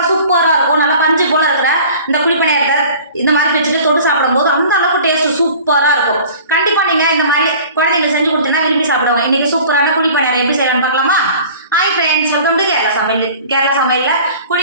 சூப்பராக இருக்கும். நல்லா பஞ்சு போல இருக்கிற இந்த குழிப்பணியாரத்தை இந்த மாதிரி வச்சுட்டு தொட்டு சாப்பிடும்போது அந்த அளவுக்கு டேஸ்ட் சூப்பராக இருக்கும். கண்டிப்பாக நீங்கள் இந்த மாதிரி குழந்தைங்க செஞ்சு கொடுத்தீங்கன்னா விரும்பி சாப்பிடுவாங்க. இன்னைக்கு சூப்பரான குழிப்பணியாரம் எப்படி செய்யலாம்னு பார்க்கலாமா? Hi friends, welcome to Kerala சமையல். கேரளா சமையலில்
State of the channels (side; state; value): both; inverted; correlation -0.45